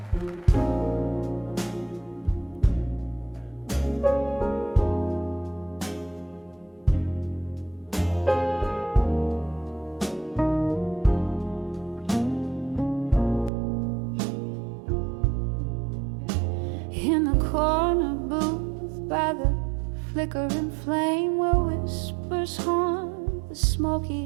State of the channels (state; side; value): drops out; left; at 13.5 s